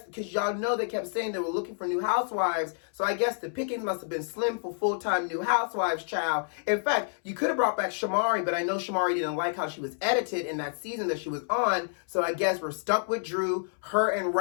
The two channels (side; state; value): right; silent; 59 dB below the other